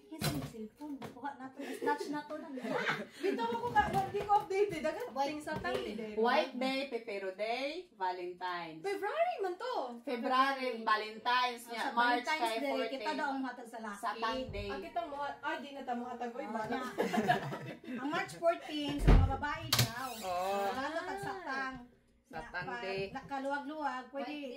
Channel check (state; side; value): identical; both; correlation 1.00